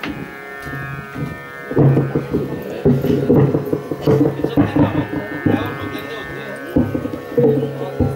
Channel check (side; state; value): both; identical; correlation 1.00